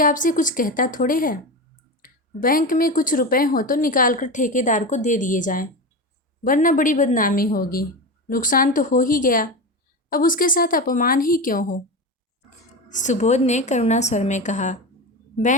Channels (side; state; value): both; normal; correlation 0.22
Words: आपसे कुछ कहता थोड़े है। बैंक में कुछ रुपए हो तो निकाल कर ठेकेदार को दे दिए जाएं, वरना बड़ी बदनामी होगी। नुकसान तो हो ही गया, अब उसके साथ अपमान ही क्यों हो? सुबोध ने करुणा स्वर में कहा,